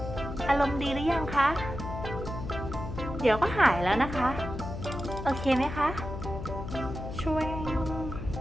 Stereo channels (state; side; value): noise; left; hum, 7 dB below the sound